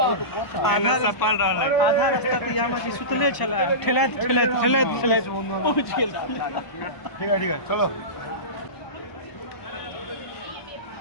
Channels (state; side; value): late; right; 1.0 ms